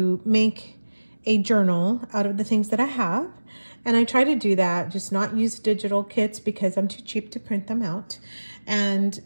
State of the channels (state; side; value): inverted; both; correlation -1.00